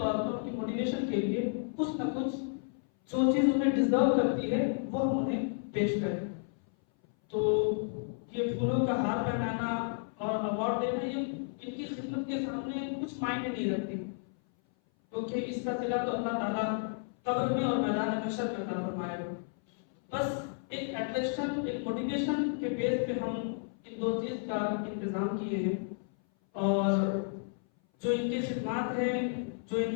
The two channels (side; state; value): right; silent; 56 dB below the other